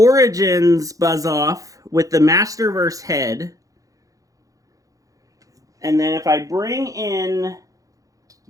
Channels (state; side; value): late; left; 0.17 ms